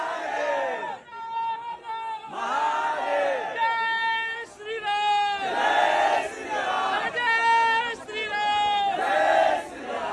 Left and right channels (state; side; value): identical; both; correlation 1.00